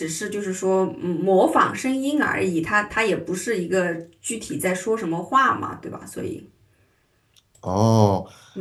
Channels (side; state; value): both; identical; correlation 1.00